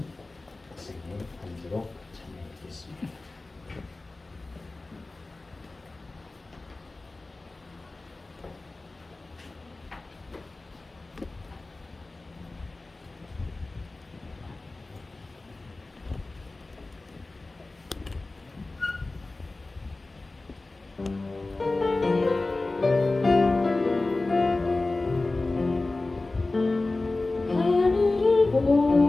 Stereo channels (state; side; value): quieter; right; 3.2 dB